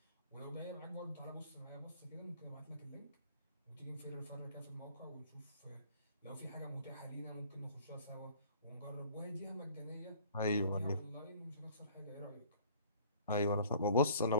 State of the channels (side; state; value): both; inverted; correlation -0.52